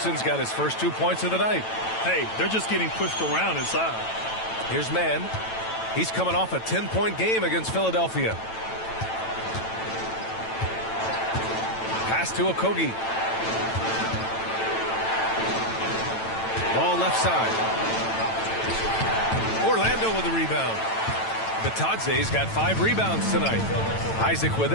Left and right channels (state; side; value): late; right; 9.0 ms